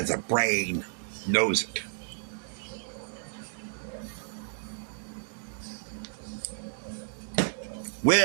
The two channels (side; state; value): left; silent; digital silence